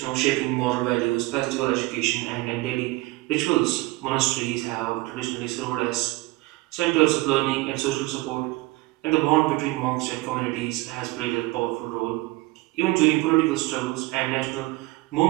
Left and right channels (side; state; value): left; quieter; 20.9 dB